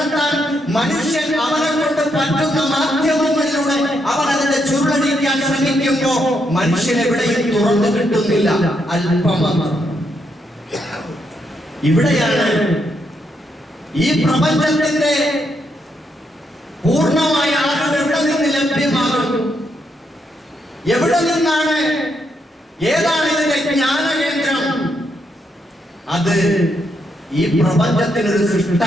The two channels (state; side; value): normal; both; correlation 0.78